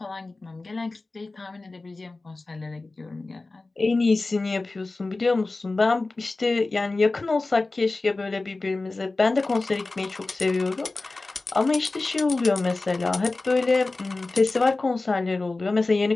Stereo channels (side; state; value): right; quieter; 3.3 dB